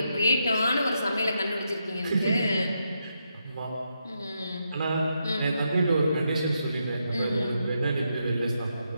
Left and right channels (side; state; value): both; inverted; correlation -0.82